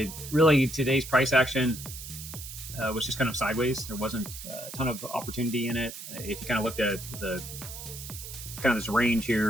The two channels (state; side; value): noise; right; hiss, 11 dB below the sound